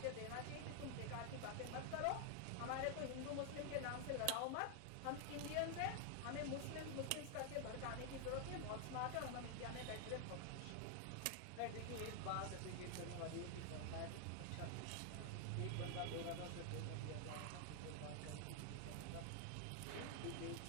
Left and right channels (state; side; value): different; both; correlation 0.00